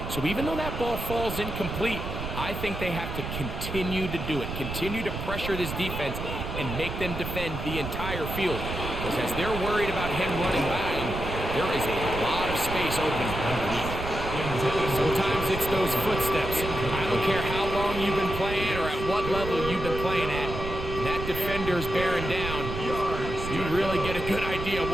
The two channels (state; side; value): noise; right; rumble, 6 dB below the sound